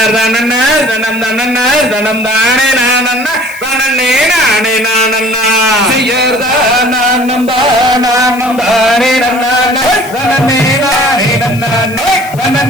தனம் தனன்னா தனம் தானே நானன்னா தனனே நானே நானன்னா செய்யாதனம் தானே நன்னா தனனே நானே நன்னா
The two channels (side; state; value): left; noise; hiss, 18 dB below the sound